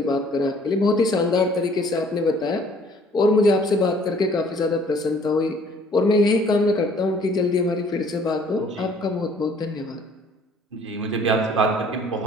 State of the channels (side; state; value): both; normal; correlation 0.57